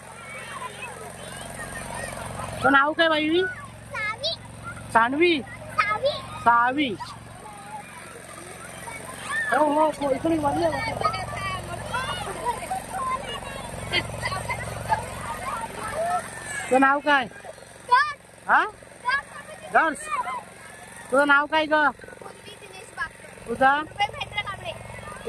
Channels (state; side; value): identical; both; correlation 1.00